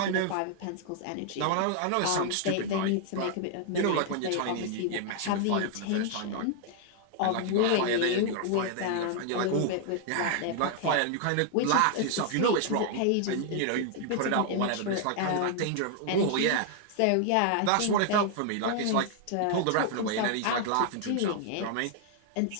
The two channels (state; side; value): different; both; correlation 0.00